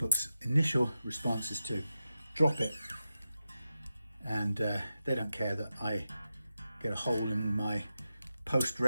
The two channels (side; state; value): both; inverted; correlation -0.90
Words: initial response is to drop it, and they don't care that I get a hole in my post